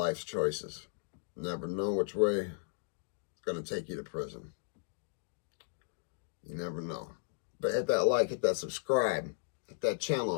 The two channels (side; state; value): right; silent; digital silence